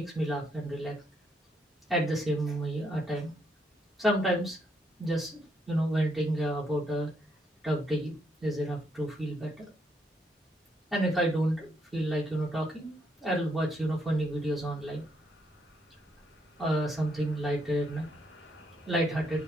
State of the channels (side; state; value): both; normal; correlation 0.75